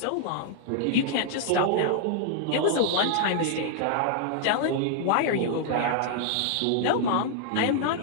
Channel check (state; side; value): different; both; correlation -0.01